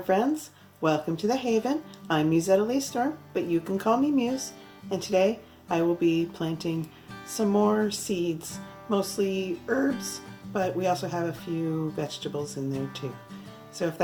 friends, welcome to the Haven. I'm Mussetta Lee Storm, but you can call me Muse, and today I will be planting some more seeds, mostly herbs, but we also have a few vegetables in there too. So if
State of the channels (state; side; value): identical; both; correlation 1.00